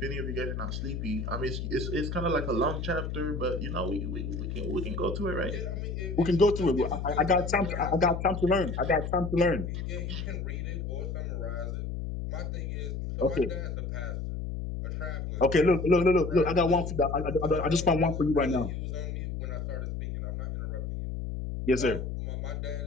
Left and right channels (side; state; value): left; noise; hum, 4 dB below the sound